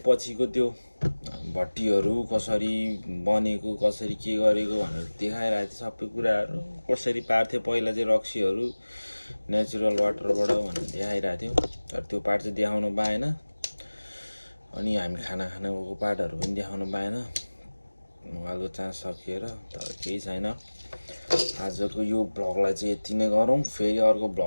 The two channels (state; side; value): inverted; both; correlation -1.00